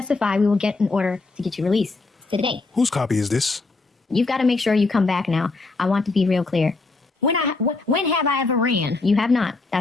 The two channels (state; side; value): quieter; right; 3.6 dB